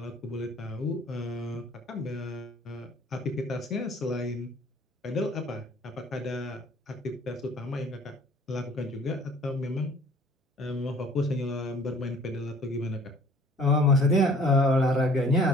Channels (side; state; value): both; normal; correlation 0.53